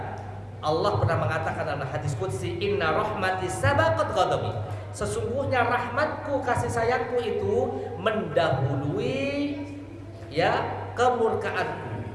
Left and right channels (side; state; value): both; identical; correlation 1.00